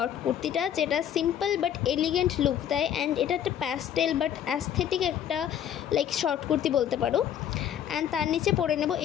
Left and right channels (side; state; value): right; quieter; 9.8 dB